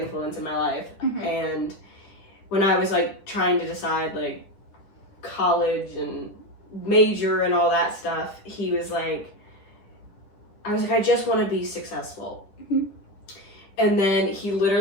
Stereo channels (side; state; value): right; late; 9.9 ms